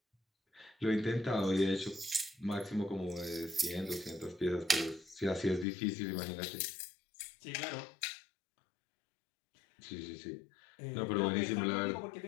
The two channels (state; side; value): drops out; right; at 5.7 s